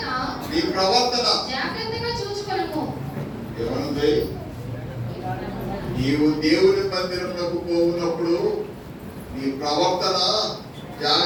ప్రవర్తన జాగ్రత్తగా చూచుకొనుము. ఏమనుంది? నీవు దేవుని మందిరమునకు పోవునప్పుడు నీ ప్రవర్తన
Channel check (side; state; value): both; identical; correlation 1.00